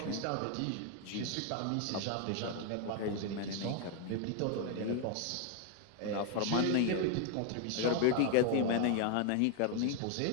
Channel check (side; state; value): both; different; correlation 0.00